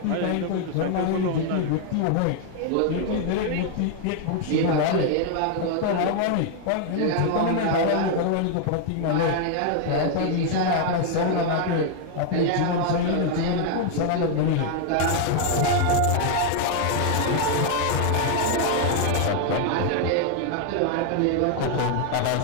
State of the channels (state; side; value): different; both; correlation 0.00